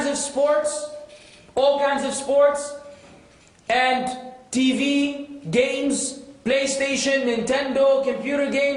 of sports, and TV, games, PlayStation, Nintendo, computer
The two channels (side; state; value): both; identical; correlation 1.00